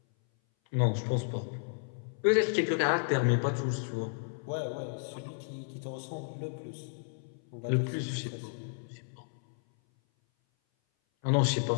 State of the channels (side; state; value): right; silent; 56 dB below the other